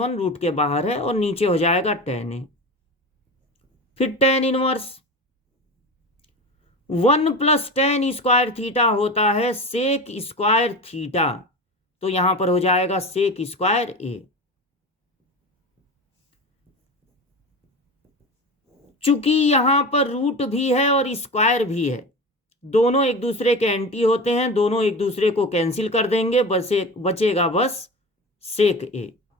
रूट के बाहर है, और नीचे हो जाएगा tan a। फिर tan इनवर्स 1+tan² होता है sec², तो यहां पर हो जाएगा sec²a। चूंकि यहां पर रूट भी है और स्क्वायर भी है, दोनों एक दूसरे के एंटी होते हैं, दोनों एक दूसरे को कैंसिल कर देंगे, बचेगा बस सेक ए।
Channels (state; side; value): normal; both; correlation 0.28